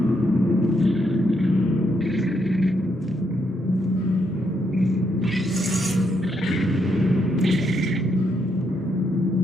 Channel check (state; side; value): normal; both; correlation 0.77